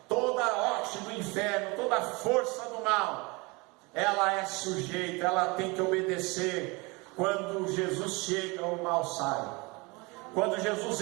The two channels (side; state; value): left; quieter; 26.4 dB